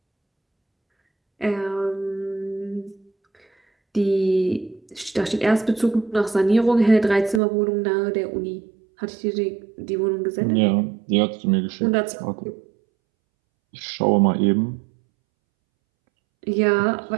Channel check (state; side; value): drops out; left; at 7.4 s